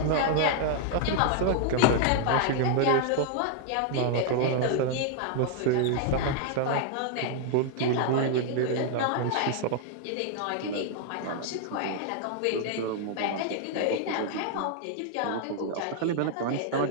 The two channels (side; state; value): both; different; correlation 0.00